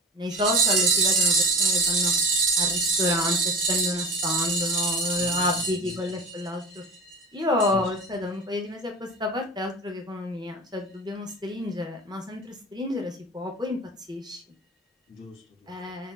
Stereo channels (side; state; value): both; normal; correlation 0.31